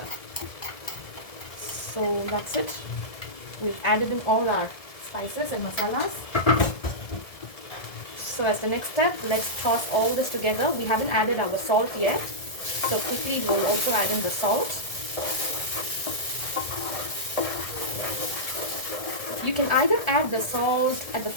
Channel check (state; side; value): late; right; 1.7 ms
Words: So that's it. We've added in all our spices and masalas. So as the next step, let's toss all this together. We haven't added our salt yet. So quickly we'll also add in the salt. You can either add the salt at the